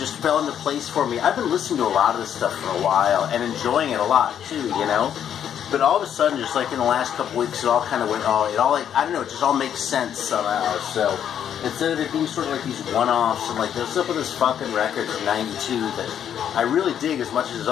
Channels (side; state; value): right; quieter; 9.3 dB